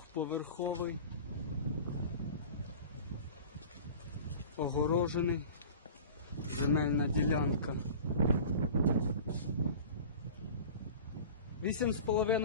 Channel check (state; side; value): inverted; both; correlation -0.39